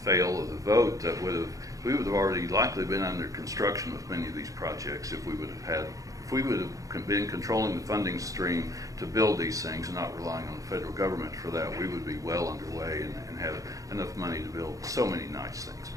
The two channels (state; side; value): late; left; 0.16 ms